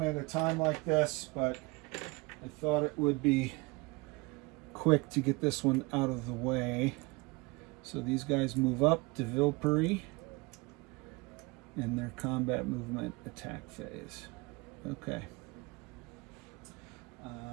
at a time like this, but I thought it would be quick to get this one out of the way. So these guys move up to Vilpuri in their combat movement attack phase. Okay. All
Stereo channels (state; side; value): quieter; left; 25.6 dB